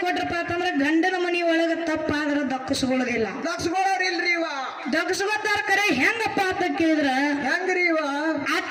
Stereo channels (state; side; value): identical; both; correlation 1.00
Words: ಕೊಟ್ರಪ್ಪ ಅಂತಂದ್ರ ಗಂಡನ ಮನಿ ಒಳಗ ತಪ್ಪಾದ್ರ ದಕ್ಕಿಸ್ಕೊಳ್ಳೋದಿಲ್ಲ. ದಕ್ಕಸ್ಕೊಳ್ಳೋರಿಲ್ರಿ ದಕ್ಕಿಸ್ಕೊತಾರ. ಕರೆ ಹೆಂಗಪ್ಪ ಅಂತ ಕೇಳಿದ್ರ, ಹೆಂಗ್ರಿ